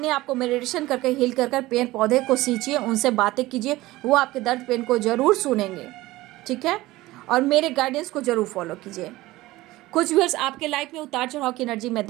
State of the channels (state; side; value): quieter; left; 18.2 dB